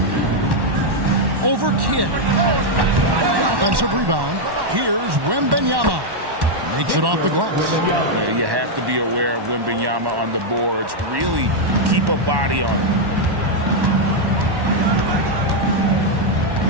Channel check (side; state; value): left; late; 1.1 ms